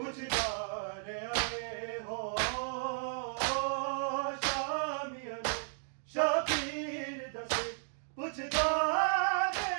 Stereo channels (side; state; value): left; silent; digital silence